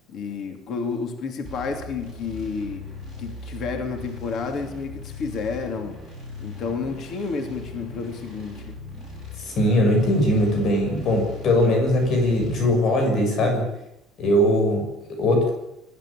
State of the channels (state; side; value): normal; both; correlation 0.50